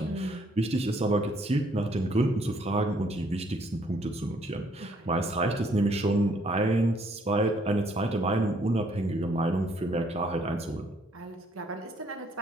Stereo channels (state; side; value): normal; both; correlation 0.66